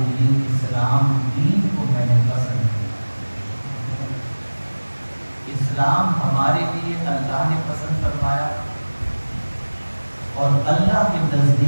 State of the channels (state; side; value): inverted; both; correlation -1.00